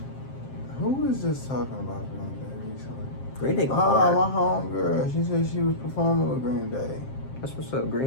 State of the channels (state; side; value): late; right; 7.6 ms